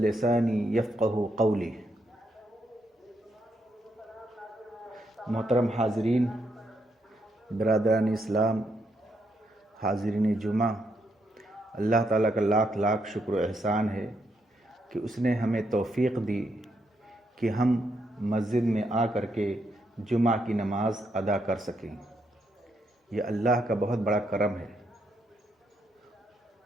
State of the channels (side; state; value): both; normal; correlation 0.78